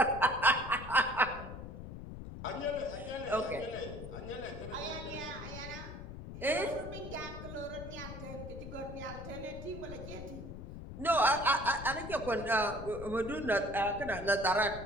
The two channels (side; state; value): left; noise; rumble, 10 dB below the sound